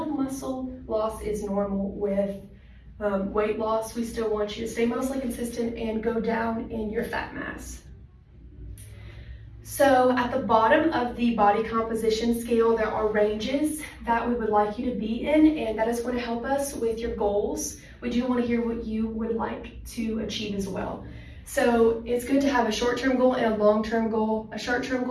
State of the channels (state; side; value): identical; both; correlation 1.00